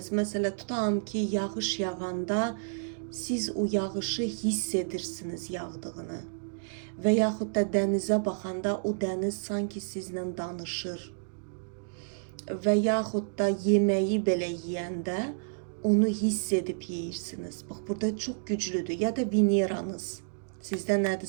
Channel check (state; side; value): silent; left; digital silence